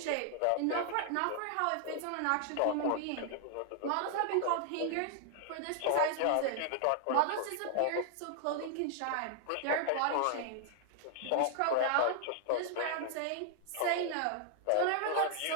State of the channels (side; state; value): both; different; correlation -0.01